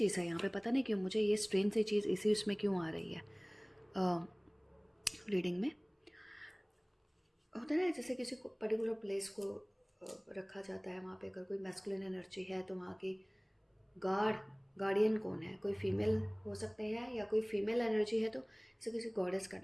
है यहाँ पे, पता नहीं क्यों मुझे ये स्ट्रेन सी चीज़ इसी उसमें क्यों आ रही है रीडिंग में। होता है ना, जैसे किसी को पर्टिकुलर प्लेस को रखा जाता है, वहाँ पे अगर कोई मैस्कुलिन एनर्जी है तो वहाँ की गार्डियन कौन है, कोई फीमेल हो सकते हैं, या कोई फीमेल एनर्जी है तो जैसे किसी गॉडेस का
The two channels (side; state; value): both; identical; correlation 1.00